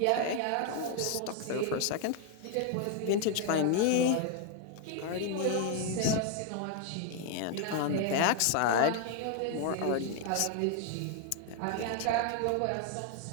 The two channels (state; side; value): different; both; correlation 0.01